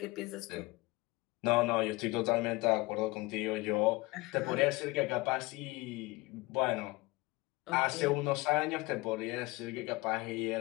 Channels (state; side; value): quieter; right; 22.8 dB